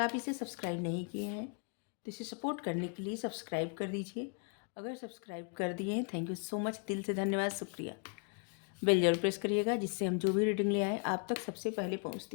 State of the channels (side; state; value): right; quieter; 39.6 dB